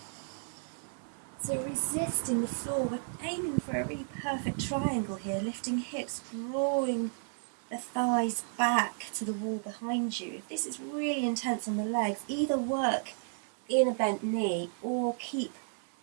So resisting the floor, we're aiming for a really perfect triangle here, lifting hips, drawing the thighs back to the wall behind you. If this is really intense on the legs, either work in a bent knee or keep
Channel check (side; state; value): left; silent; digital silence